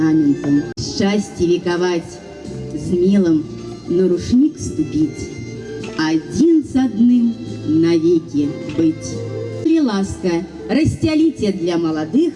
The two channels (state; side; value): identical; both; correlation 1.00